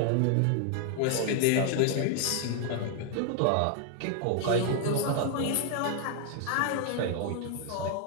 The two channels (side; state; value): both; different; correlation 0.00